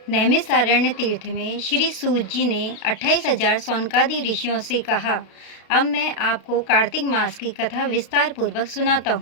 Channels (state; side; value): late; right; 32 ms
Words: नैमिषारण्य तीर्थ में श्री सूत जी ने 28,000 सौनकादि ऋषियों से कहा, अब मैं आपको कार्तिक मास की कथा विस्तार पूर्वक सुनाता